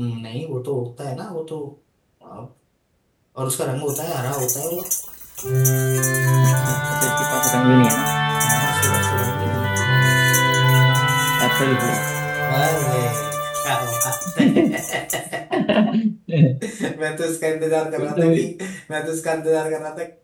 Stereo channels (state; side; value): identical; both; correlation 1.00